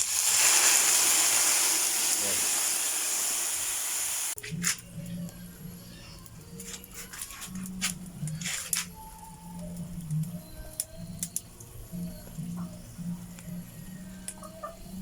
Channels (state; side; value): identical; both; correlation 1.00